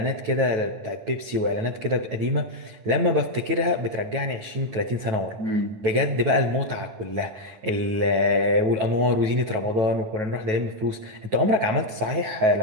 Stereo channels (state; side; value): late; left; 9.2 ms